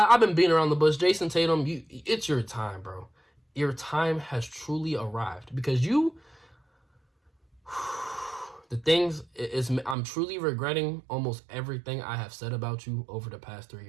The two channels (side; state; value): left; drops out; at 10.0 s